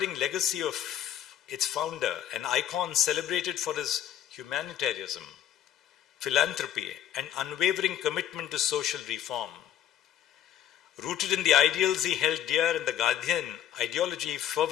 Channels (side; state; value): right; quieter; 10.9 dB